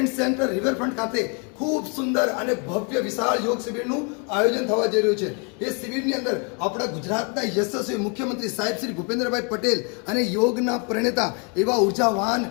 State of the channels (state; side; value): quieter; right; 35.9 dB